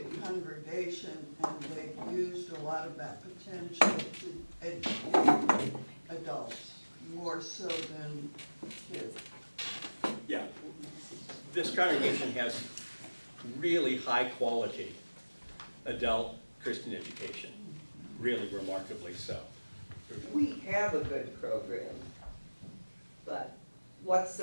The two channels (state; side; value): inverted; both; correlation -1.00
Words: congregation, and they've used a lot of that potential to educate adults, more so than kids. Yeah, this congregation has really high-quality adult Christian education, really remarkably so. We have a good program, but what's